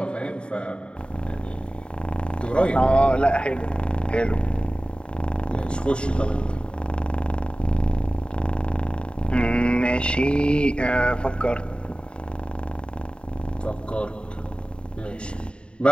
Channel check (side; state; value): right; late; 0.053 ms